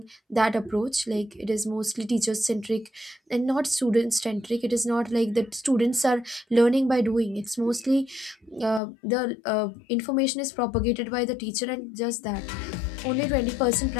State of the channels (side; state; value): right; drops out; at 8.8 s